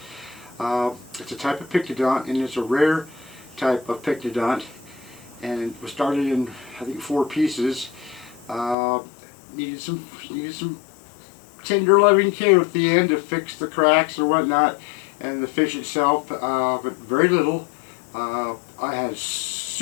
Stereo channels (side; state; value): right; drops out; at 8.8 s